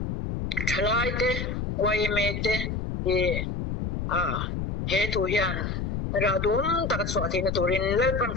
thlai te wai me te he tu hian ra dum tak chwa thi na turin le pan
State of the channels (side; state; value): left; noise; rumble, 3 dB below the sound